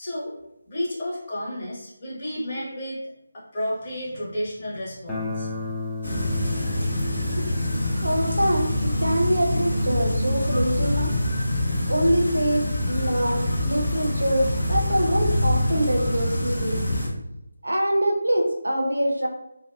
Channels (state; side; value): inverted; both; correlation -0.90